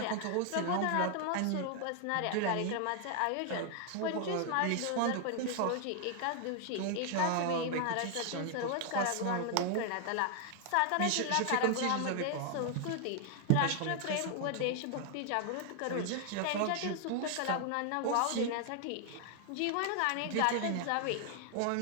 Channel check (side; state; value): both; different; correlation 0.00